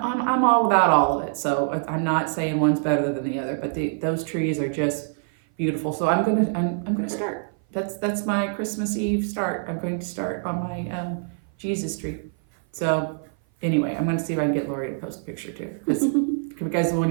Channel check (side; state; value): left; silent; 57 dB below the other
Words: all about all of it, so I'm not saying one's better than the other, but those trees are just beautiful. So I'm gonna start. That's my Christmas Eve start. I'm going to start on my Jesus tree. So anyway, I'm going to see if I can get Lori to post a picture too. Because when